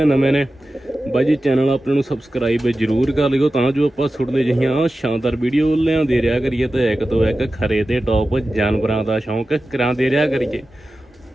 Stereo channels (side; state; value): both; normal; correlation 0.94